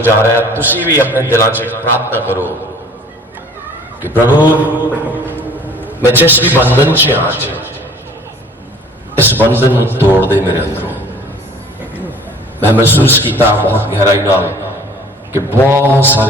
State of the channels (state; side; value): normal; both; correlation 0.50